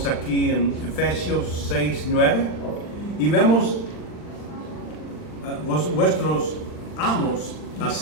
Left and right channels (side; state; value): right; late; 39 ms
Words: aquí en Efesios 6:9 y vemos vuestros amos